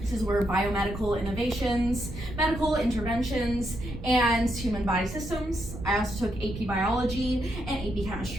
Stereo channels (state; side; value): noise; right; rumble, 10 dB below the sound